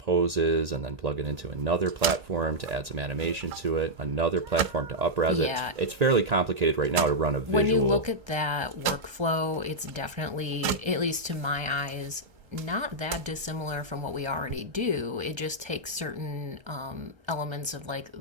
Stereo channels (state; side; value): late; left; 1.3 ms